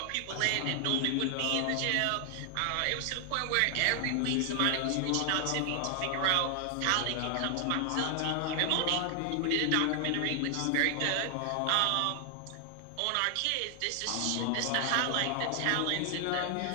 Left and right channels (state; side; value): different; both; correlation 0.00